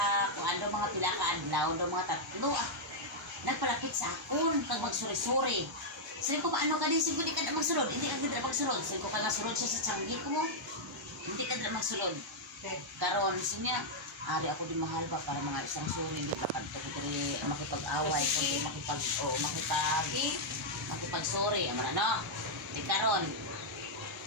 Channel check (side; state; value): both; normal; correlation -0.05